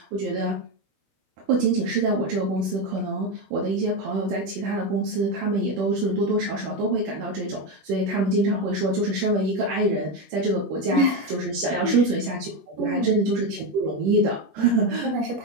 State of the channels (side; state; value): left; late; 17 ms